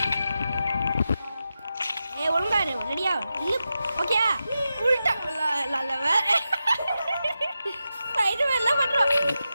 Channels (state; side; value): inverted; both; correlation -0.90